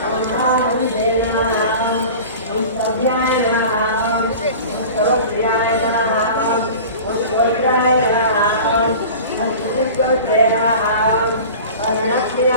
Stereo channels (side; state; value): both; inverted; correlation -0.38